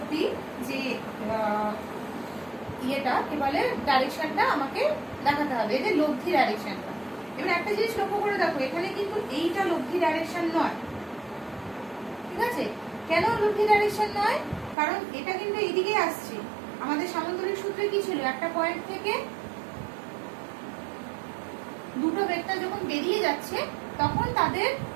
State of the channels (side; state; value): left; drops out; at 14.8 s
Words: যে ইয়েটা কি বলে ডাইরেকশনটা আমাকে দেখাতে হবে, এদের লব্ধি ডাইরেকশনটা। এবার একটা জিনিস লক্ষ্য করে দেখো, এখানে কিন্তু এইটা লব্ধি ডাইরেকশন নয়, ঠিক আছে। কেন লব্ধি ডাইরেকশন নয়, কারণ এটা কিন্তু এইদিকে আসছে, আমাদের সামান্তরিক সূত্রে কি ছিল, একটা পয়েন্ট থেকে দুটো ভেক্টর যখন বেরিয়ে যাচ্ছে তখন তাদের